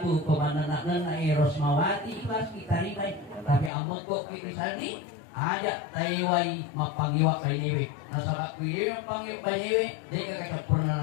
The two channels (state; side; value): drops out; right; at 3.7 s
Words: komandan Rosmawati ikhlas kita ribai, tapi ambo kok kita sandi ajak taiwai mapangiwa bainewe nasabak kuyewe mapangiwa bainewe dia kakak